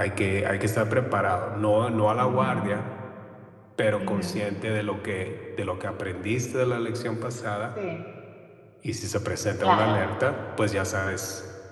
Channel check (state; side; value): identical; both; correlation 1.00